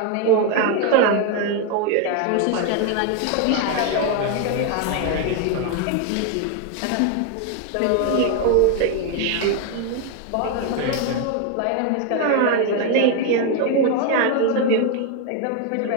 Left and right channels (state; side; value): different; both; correlation 0.01